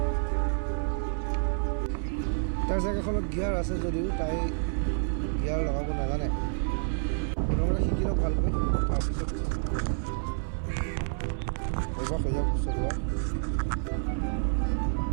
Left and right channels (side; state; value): left; silent; 59 dB below the other